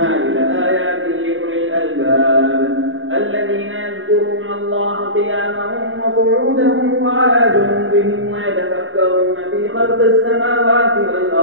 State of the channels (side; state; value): left; late; 0.59 ms